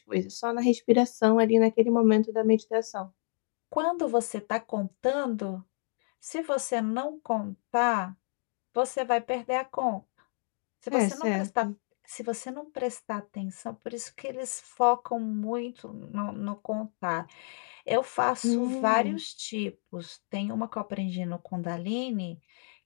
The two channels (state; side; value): silent; right; 58 dB below the other